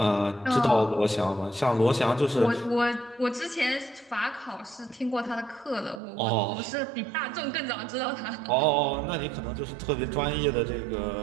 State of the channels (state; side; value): drops out; left; at 6.0 s